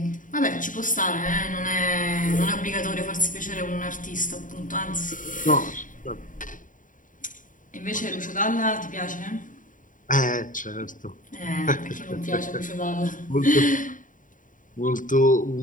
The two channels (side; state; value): right; late; 0.38 ms